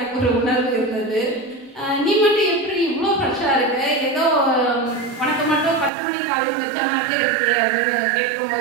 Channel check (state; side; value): drops out; left; at 5.9 s